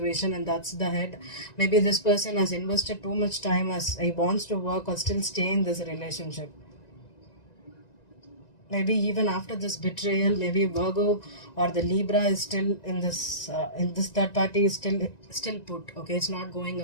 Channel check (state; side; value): late; right; 1.9 ms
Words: and that's the head. Maybe this person has invested too much time as he wants to work or still stay in this relationship. Maybe even after this betrayal, maybe Virgo or the Libra is still in this third party is still put. Okay, it's not going